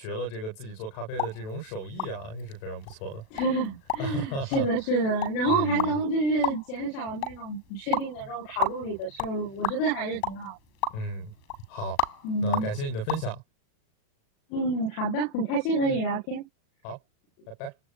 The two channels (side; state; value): right; late; 37 ms